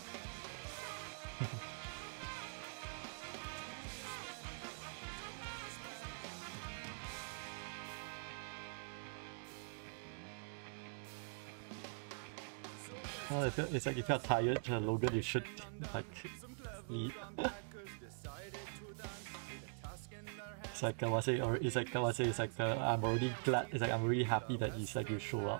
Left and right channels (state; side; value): silent; left; digital silence